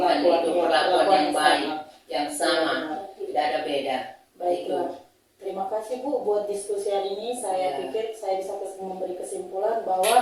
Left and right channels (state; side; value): identical; both; correlation 1.00